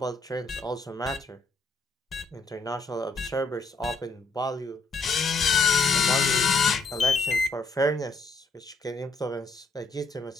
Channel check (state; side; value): quieter; right; 3.6 dB